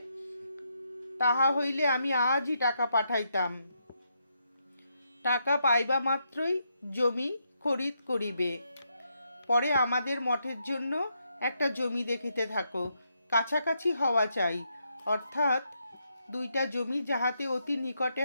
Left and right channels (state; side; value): inverted; both; correlation -0.80